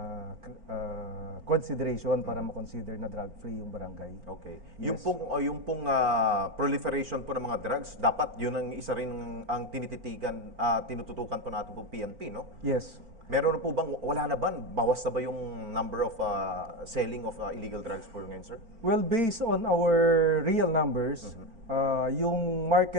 consideration para ma-consider na drug-free yung barangay. Okay. Yes. Yung pong proliferation po ng mga drugs, dapat yun ang isa rin ang tinititigan, tinututukan po natin po PNP, no? Yes. Meron na po bang, wala na ba? Bawas na ba yung number of selling of illegal drugs po ngayon, sir? Well, based on our real numbers, yung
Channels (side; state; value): left; late; 4.4 ms